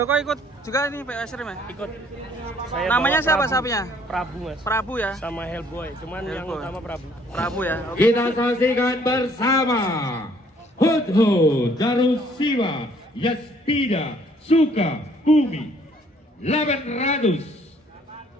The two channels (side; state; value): both; normal; correlation 0.61